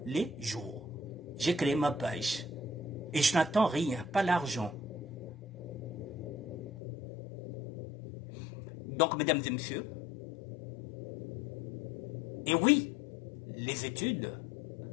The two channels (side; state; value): right; drops out; at 6.7 s